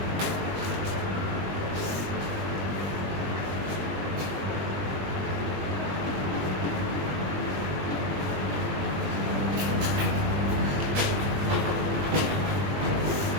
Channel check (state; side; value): late; left; 21 ms